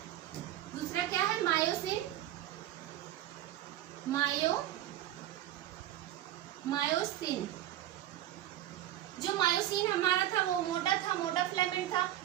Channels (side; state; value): left; quieter; 13.1 dB